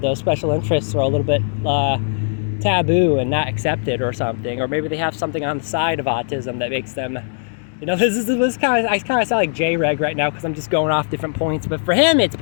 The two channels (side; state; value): right; silent; digital silence